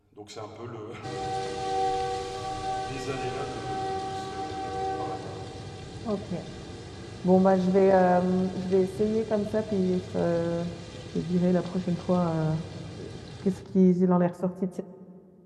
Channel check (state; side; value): identical; both; correlation 1.00